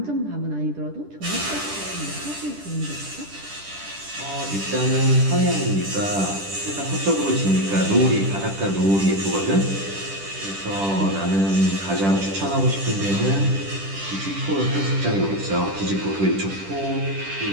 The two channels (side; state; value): left; late; 10 ms